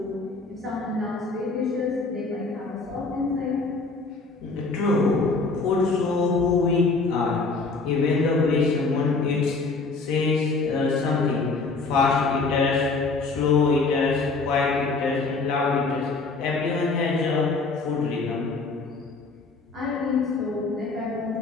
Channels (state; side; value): quieter; right; 3.9 dB